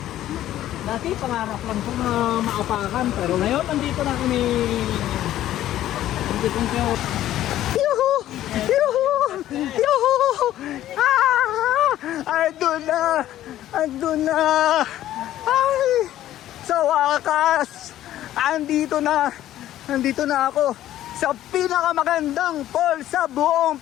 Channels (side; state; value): right; quieter; 13.1 dB